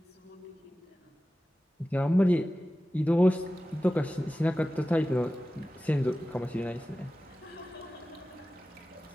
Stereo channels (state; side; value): normal; both; correlation 0.95